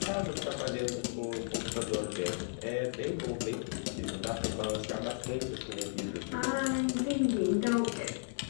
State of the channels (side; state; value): right; silent; digital silence